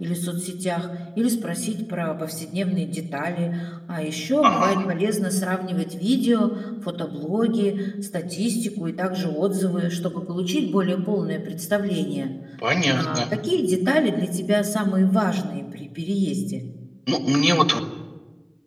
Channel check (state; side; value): identical; both; correlation 1.00